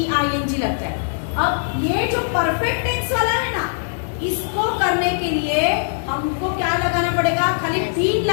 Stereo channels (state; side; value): silent; right; digital silence